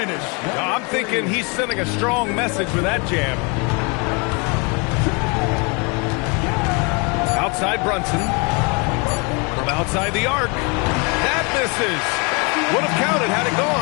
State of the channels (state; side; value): quieter; right; 31.7 dB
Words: I'm thinking he's sending a strong message with that jam. Outside Brunson. From outside the arc. That misses. Would have counted had it